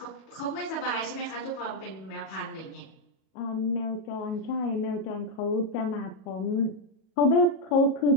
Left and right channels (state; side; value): late; right; 37 ms